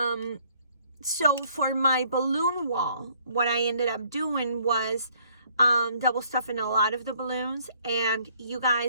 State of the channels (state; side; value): inverted; both; correlation -0.63